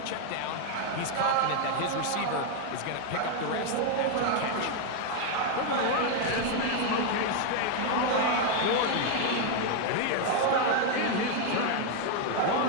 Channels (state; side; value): different; both; correlation 0.01